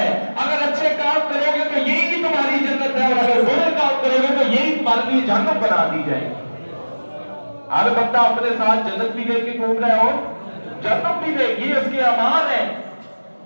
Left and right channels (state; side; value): inverted; both; correlation -1.00